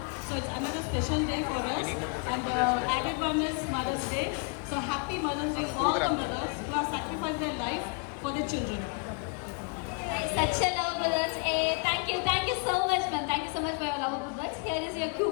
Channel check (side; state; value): right; quieter; 35.9 dB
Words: So it's another special day for us and added one is Mother's Day. So happy Mother's Day all the mothers who have sacrificed their life for the children. Such a lovable words. Thank you so much ma'am. Thank you so much for your lovable words. Here is your